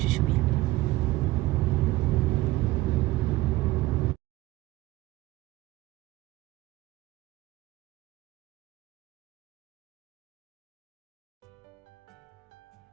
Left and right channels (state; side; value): quieter; left; 17.9 dB